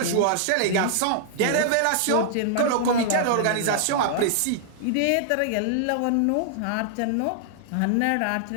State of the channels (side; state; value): both; different; correlation -0.01